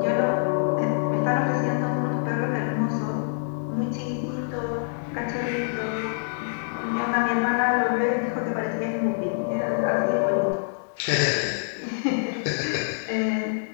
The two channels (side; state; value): right; silent; digital silence